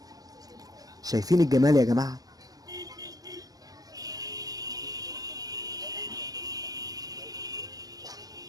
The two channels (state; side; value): late; left; 0.18 ms